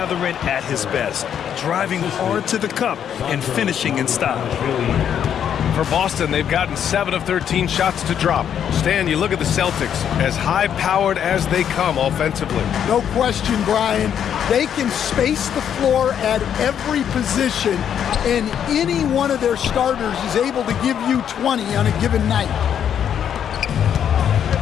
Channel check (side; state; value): right; quieter; 8.9 dB